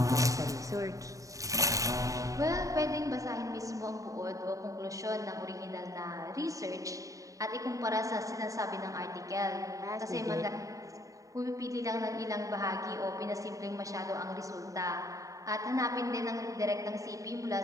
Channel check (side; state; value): left; late; 0.16 ms